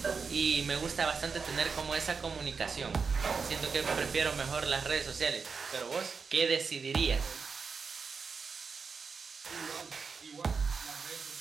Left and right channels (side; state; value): left; quieter; 5.3 dB